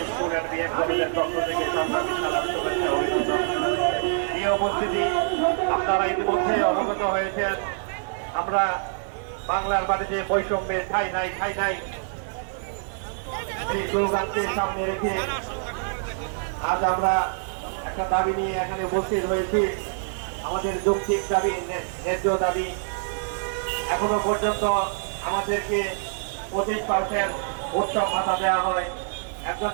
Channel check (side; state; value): left; silent; digital silence